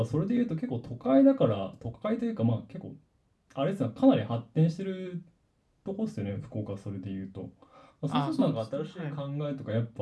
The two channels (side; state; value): both; identical; correlation 1.00